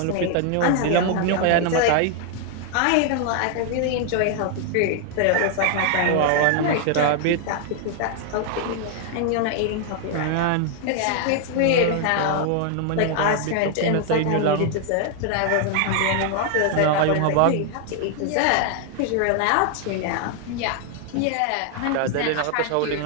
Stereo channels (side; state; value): both; different; correlation 0.00